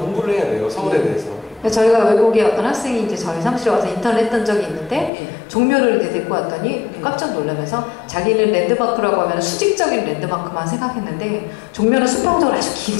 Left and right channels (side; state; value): right; drops out; at 5.1 s